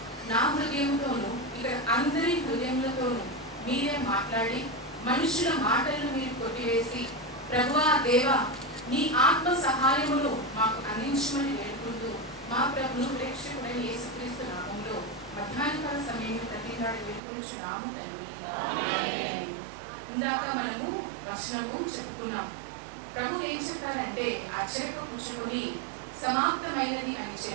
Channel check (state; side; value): drops out; left; at 17.2 s